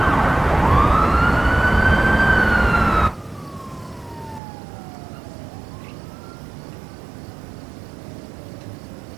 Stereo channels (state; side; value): drops out; left; at 4.4 s